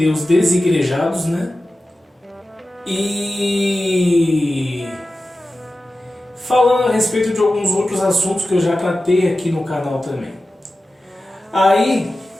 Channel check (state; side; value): normal; both; correlation 0.94